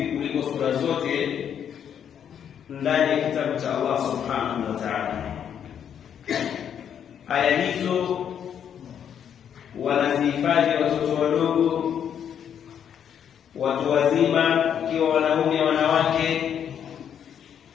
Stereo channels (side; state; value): right; quieter; 8.7 dB